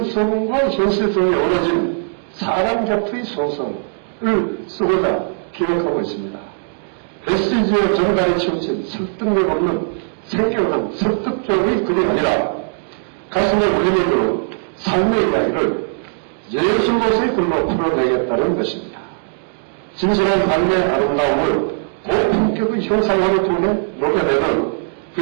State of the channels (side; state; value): left; silent; digital silence